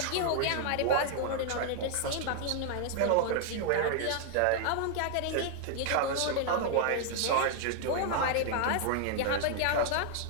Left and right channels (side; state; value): both; different; correlation 0.00